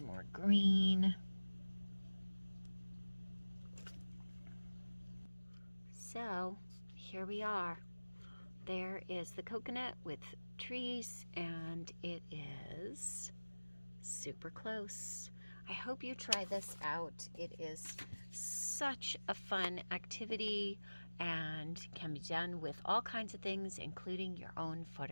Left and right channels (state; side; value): inverted; both; correlation -1.00